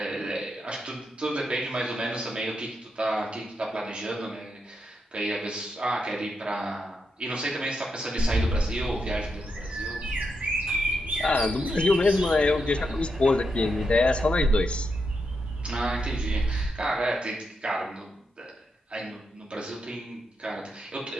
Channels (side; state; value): both; normal; correlation 0.83